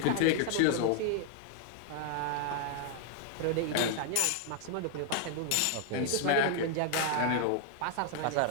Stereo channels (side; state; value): both; different; correlation 0.00